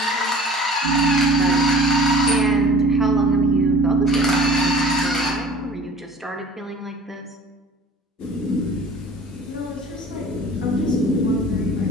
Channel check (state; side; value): normal; both; correlation 0.45